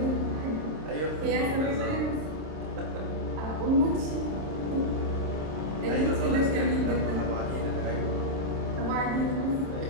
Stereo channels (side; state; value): left; late; 27 ms